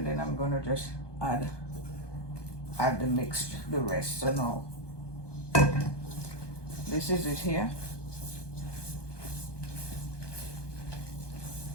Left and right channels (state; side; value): late; right; 1.2 ms